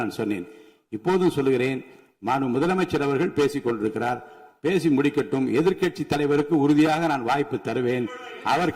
நான் சொன்னேன். இப்போதும் சொல்லுகிறேன், மாண்புமிகு முதலமைச்சர் அவர்கள் பேசிக் கொண்டிருக்கிறார். பேசி முடிக்கட்டும். எதிர்க்கட்சி தலைவருக்கு உறுதியாக நான் வாய்ப்பு தருவேன். அவர்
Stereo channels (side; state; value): both; identical; correlation 1.00